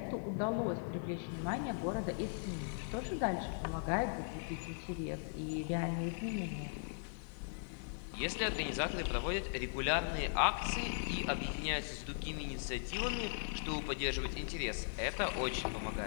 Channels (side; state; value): right; silent; 52 dB below the other